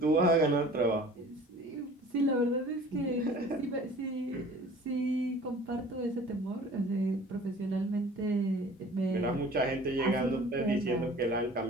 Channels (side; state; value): both; normal; correlation 0.46